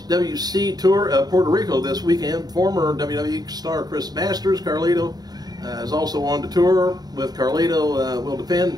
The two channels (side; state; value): left; late; 0.19 ms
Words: Tour of Puerto Rico this weekend. Former WWE star Chris Masters, Carlito, is also on the tour with Carlito. Will